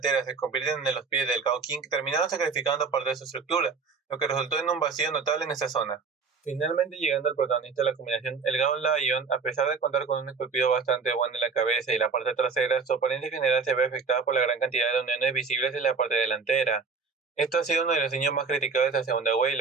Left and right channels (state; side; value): quieter; left; 5.0 dB